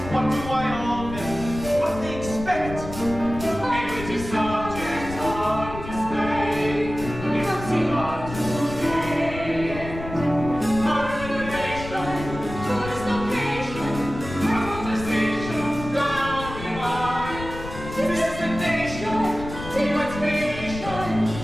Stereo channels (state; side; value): noise; left; rumble, 10 dB below the sound